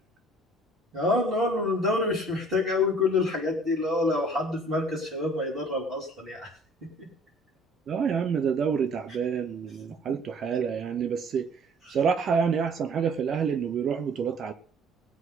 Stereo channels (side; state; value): both; normal; correlation 0.53